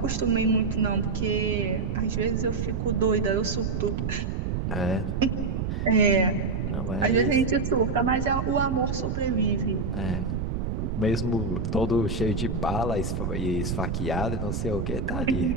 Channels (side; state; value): right; noise; rumble, 1 dB below the sound